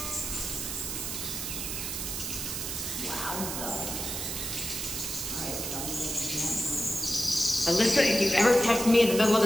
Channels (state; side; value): noise; right; hiss, 4 dB below the sound